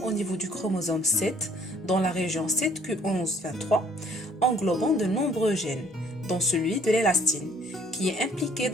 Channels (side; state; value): both; normal; correlation 0.60